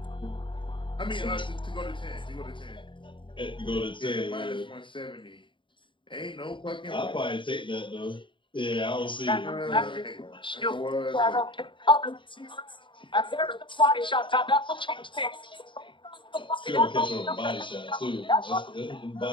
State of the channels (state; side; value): late; right; 0.24 ms